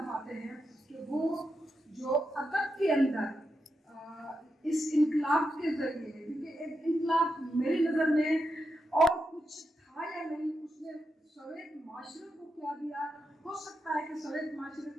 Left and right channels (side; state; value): both; normal; correlation 0.86